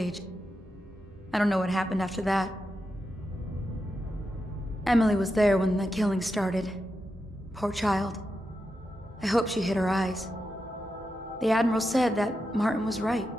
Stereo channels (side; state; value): both; normal; correlation 0.88